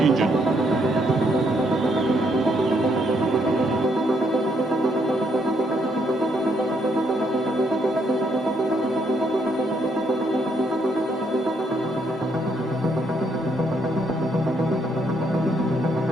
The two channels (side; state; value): both; normal; correlation 0.73